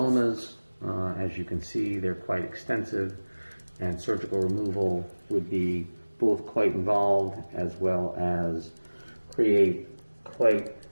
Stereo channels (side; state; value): both; inverted; correlation -1.00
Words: As you can see, they're quite extensive, and surgical removal would be both quite involved as well as create quite